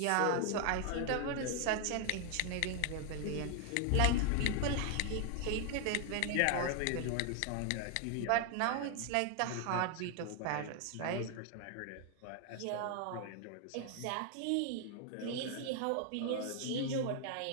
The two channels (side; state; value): both; different; correlation 0.00